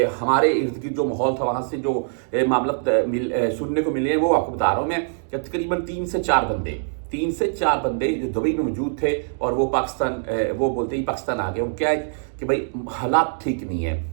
हमारे इर्द गिर्द जो माहौल था, वहाँ से जो मामला सुनने को मिले हैं वो आपको बता रहा हूँ मैं कि तकरीबन 3 से 4 बंदे जो दुबई में मौजूद थे और वो पाकिस्तान वो बोलते ही पाकिस्तान आ गए। वो क्या है कि भाई हालात ठीक नहीं है।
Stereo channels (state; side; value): silent; left; digital silence